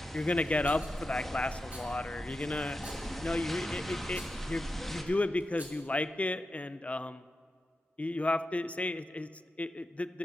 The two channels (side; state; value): both; normal; correlation 0.90